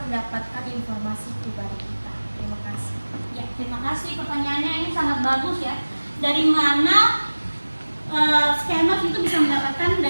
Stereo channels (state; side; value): inverted; both; correlation -1.00